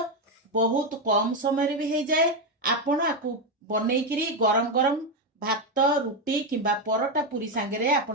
बहुत कम समय भी हो जाए। आपण आकु बनैकिरी गरम गरम भात रुटी किंबा परोटा पूरी सांगरे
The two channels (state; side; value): normal; both; correlation 0.07